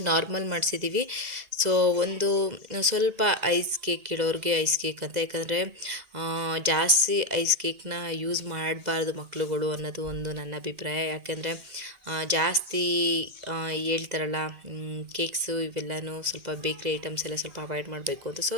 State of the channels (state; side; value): late; left; 2.0 ms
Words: ನಾರ್ಮಲ್ ಮಾಡಿಸಿದ್ದೀವಿ. ಸೊ ಒಂದು ಸ್ವಲ್ಪ ಐಸ್ ಕೇಕ್ ಇಡೋರಿಗೆ ಐಸ್ ಕೇಕ್ ಅಂತ, ಯಾಕಂದರೆ ಜಾಸ್ತಿ ಐಸ್ ಕೇಕ್ನ ಯೂಸ್ ಮಾಡಬಾರ್ದು ಮಕ್ಕಳುಗಳು ಅನ್ನೋದು ಒಂದು ನನ್ನ ಅಭಿಪ್ರಾಯ. ಯಾಕೆಂದರೆ ಜಾಸ್ತಿ ಹೇಳ್ತಾರಲ್ಲ ಕೇಕ್ಸು ಇವೆಲ್ಲನೂ ಸ್ವಲ್ಪ ಬೇಕ್ರಿ ಐಟಮ್ಸ್ ಎಲ್ಲ ಸ್ವಲ್ಪ ಅವಾಯ್ಡ್ ಮಾಡಬೇಕು ಅಂತ. ಸೊ